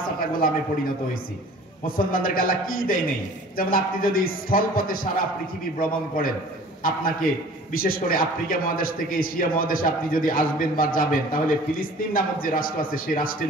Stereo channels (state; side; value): normal; both; correlation 0.47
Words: গোলামে পরিণত হয়েছি। মুসলমানদের আল্লাহ কি দেয় নেই? যেমন আপনি যদি স্থলপথে সারা পৃথিবী ভ্রমণ করেন, আপনাকে বিশেষ করে আফ্রিকা মহাদেশ থেকে এশিয়া মহাদেশে আপনি যদি আসবেন বা যাবেন, তাহলে ফিলিস্তিন নামক যে রাষ্ট্র আছে সেই রাষ্ট্রের